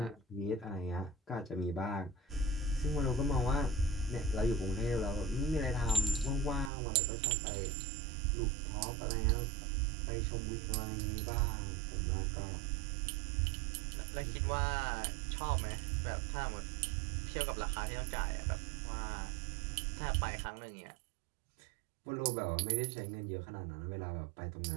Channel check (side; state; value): left; drops out; at 6.7 s